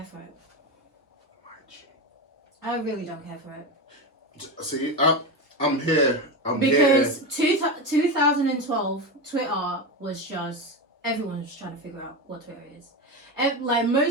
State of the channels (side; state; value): both; normal; correlation 0.18